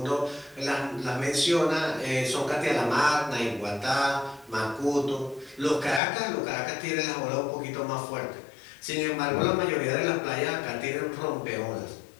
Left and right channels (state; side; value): drops out; right; at 6.0 s